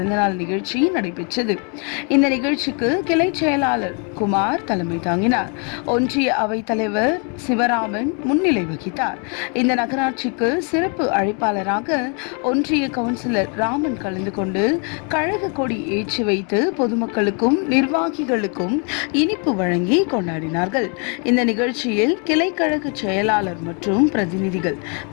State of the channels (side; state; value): right; quieter; 37.4 dB